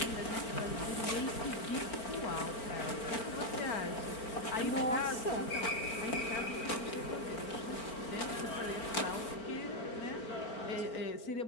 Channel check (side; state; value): right; late; 4.4 ms